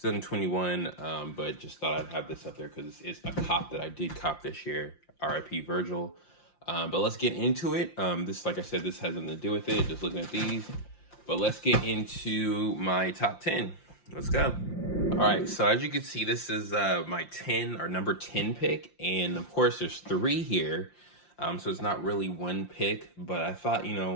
But just thought I'd have this up there because it's a cop that I did cop this year. RIP Virgil. But let's get into it. This, like I said, this has nothing to do with it. Just looking at these. But let's get into my top 10. Let's go. All right, so as you can see, this is my 10 or number 10 pick. And of course, there's three here. So it's not really one pick, but I thought,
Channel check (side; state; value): right; late; 5.7 ms